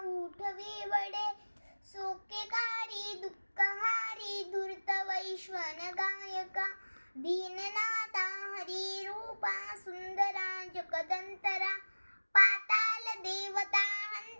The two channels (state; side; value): inverted; both; correlation -1.00